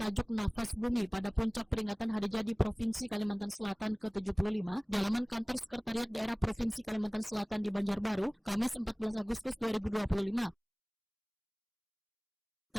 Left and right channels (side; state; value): both; identical; correlation 1.00